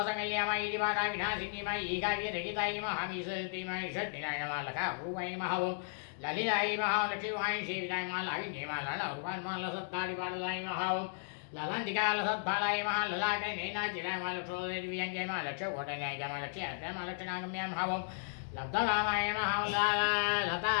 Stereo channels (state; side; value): silent; right; digital silence